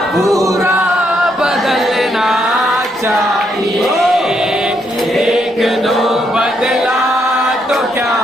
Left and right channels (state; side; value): normal; both; correlation 0.76